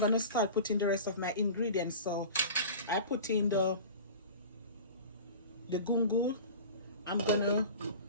start putting the rest of my ingredients. So I put in the gungo. I'm gonna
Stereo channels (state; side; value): inverted; both; correlation -0.36